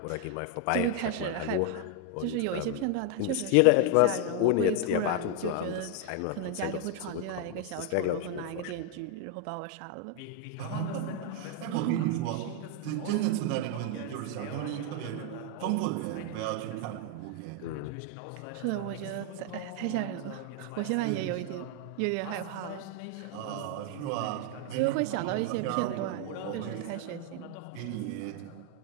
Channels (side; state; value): both; different; correlation 0.01